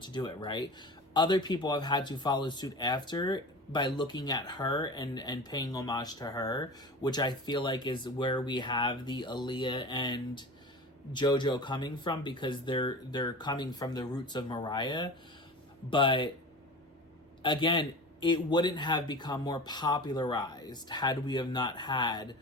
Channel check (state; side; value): normal; both; correlation 0.33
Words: do it, right? Other people have had to follow suit after by looking at her and paying homage to her, which I feel like is where we have the Aaliyah and Jojo coming from, because they're coming from the roots of Mariah. But again, it wouldn't have become more popularized had we have not had